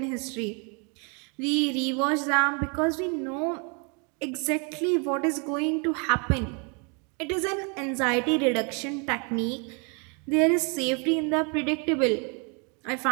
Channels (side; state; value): left; quieter; 35.1 dB